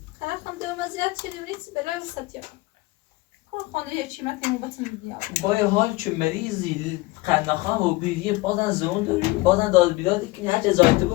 خرکم دو مزیاد شدیم نیست بلا وسط یا کن خانه یه چیمت اینو باتون میدیم با یه حال که مریضی قندخواه و بیریه بازن زون داری بازن داد بیدادی کنی هرچه زایده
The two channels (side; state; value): right; quieter; 21.1 dB